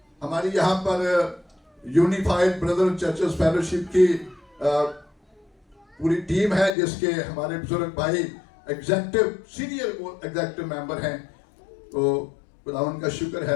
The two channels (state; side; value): drops out; right; at 6.7 s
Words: ہماری یہاں پر یونیفائڈ بردر چرچز فیلوشپ کی پوری ٹیم ہے، جس کے ہمارے بزرگ بھائی سینئر ایگزیکٹو ممبر ہیں. تو خداوند کا شکر